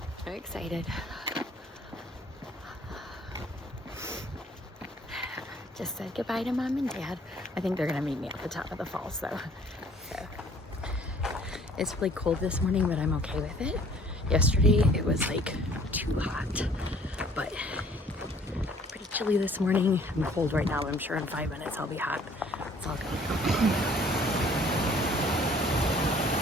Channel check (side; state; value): both; normal; correlation 0.56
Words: Very excited. Just said goodbye to Mom and Dad. I think they're gonna meet me at the top of the falls though. So it's really cold this morning, but I'm okay with it. Yesterday it was like too hot, but pretty chilly this morning. I'm cold right now, but I'm sure in 5 minutes I'll be hot. It's all good.